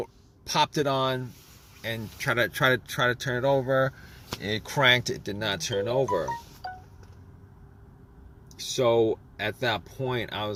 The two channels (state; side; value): identical; both; correlation 1.00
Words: popped it on, and try to turn it over. It cranked. It did not turn over. So at that point, I